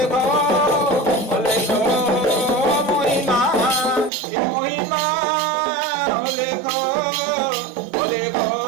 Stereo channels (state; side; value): drops out; left; at 4.1 s